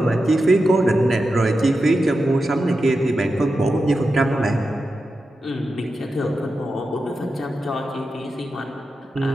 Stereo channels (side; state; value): both; normal; correlation 0.90